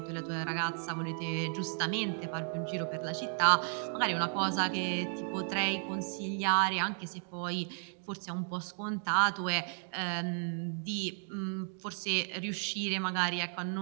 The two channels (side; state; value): left; silent; 55 dB below the other